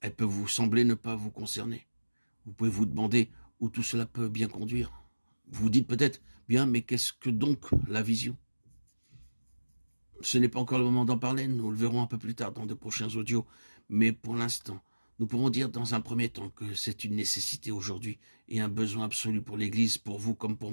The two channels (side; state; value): both; inverted; correlation -1.00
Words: Elle peut vous sembler ne pas vous concerner. Vous pouvez vous demander où tout cela peut bien conduire. Vous vous dites peut-être, bien, mais qu'est-ce que donc la vision? Ce n'est pas encore le moment d'en parler, nous le verrons un peu plus tard dans de prochains audios, mais pour l'instant, nous pouvons dire dans un premier temps que c'est une nécessité aujourd'hui et un besoin absolu pour l'Église, pour vous comme pour